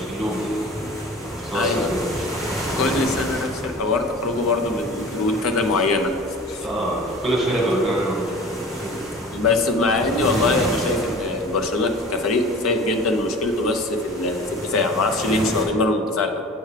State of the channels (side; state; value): both; normal; correlation 0.41